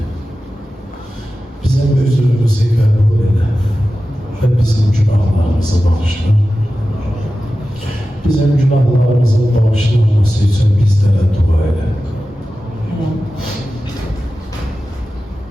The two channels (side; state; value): both; normal; correlation 0.94